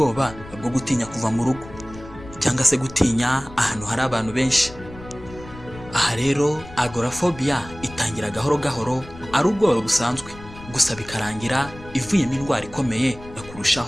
bwo gutinya kuva mu rugo cyangwa se gutinya ahantu hari abantu benshi. Aha rero agoraphobia itangira gahoro gahoro ari ubwoba busanzwe, gusa bikarangira ivuyemo indwara ikomeye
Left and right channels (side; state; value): left; noise; rumble, 17 dB below the sound